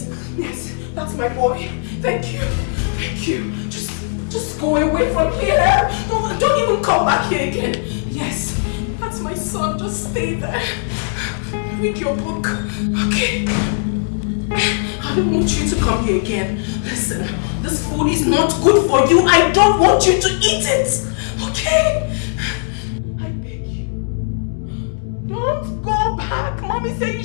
Yes, that's my boy. Thank you. Thank you. Just go away from here. Don't even come back here again. Yes, that's my son. Just stay there. Read your book. Okay? I don't want you to come here again. Listen, this food is not good for you. I don't want you to eat it. Okay? Don't go back. Mommy said you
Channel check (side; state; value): right; silent; 67 dB below the other